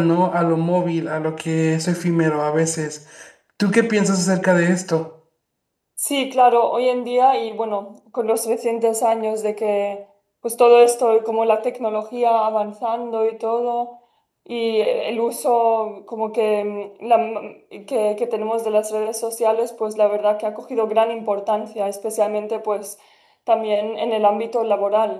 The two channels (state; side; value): identical; both; correlation 1.00